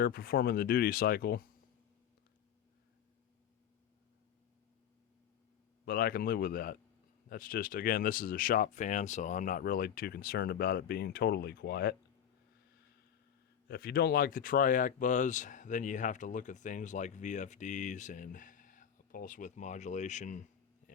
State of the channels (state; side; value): quieter; right; 9.2 dB